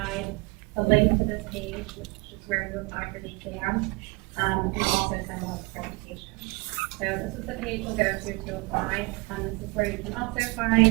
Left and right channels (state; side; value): quieter; left; 29.2 dB